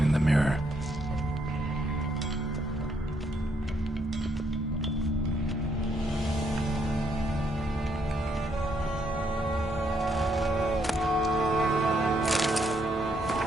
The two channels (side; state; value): both; normal; correlation 0.74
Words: in the mirror.